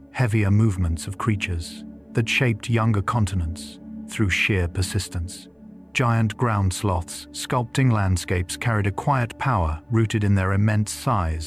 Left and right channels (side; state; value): both; identical; correlation 1.00